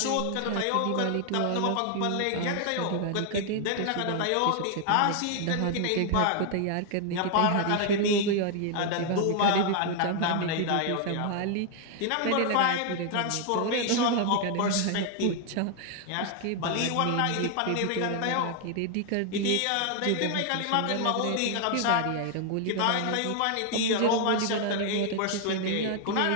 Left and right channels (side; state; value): both; different; correlation 0.00